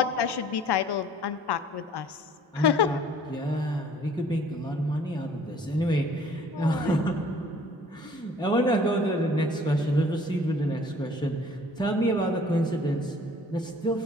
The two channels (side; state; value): both; normal; correlation 0.54